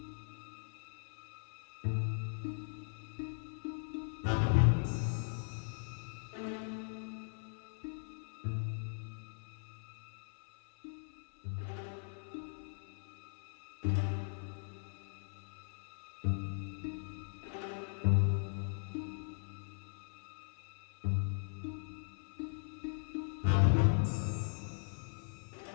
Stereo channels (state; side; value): silent; right; 51 dB below the other